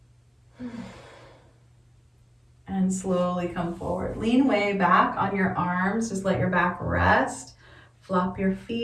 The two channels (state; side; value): identical; both; correlation 1.00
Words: And slowly come forward. Lean way back on your arms. Just let your back rest. Flop your